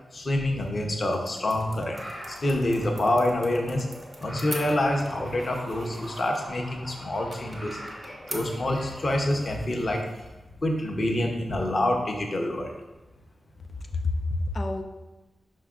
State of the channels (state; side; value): normal; both; correlation 0.91